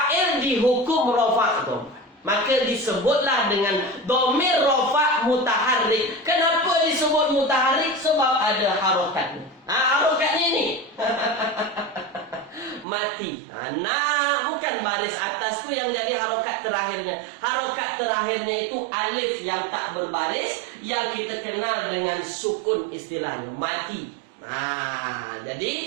dihukum rofa tuan-puan. Maka disebutlah dengan domir rofa mutaharrik. Kenapa disebut mutaharrik? Sebab ada harokatnya. Harokatnya ini. Mati. Bukan baris atas tu yang jadi harokat terakhirnya. Harokat terakhirnya itu alif yang tak berbaris, yang kita kenal dengan sukun istilahnya. Mati.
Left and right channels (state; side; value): drops out; left; at 12.9 s